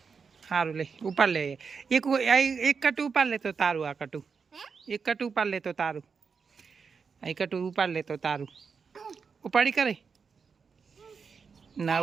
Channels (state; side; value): quieter; left; 5.6 dB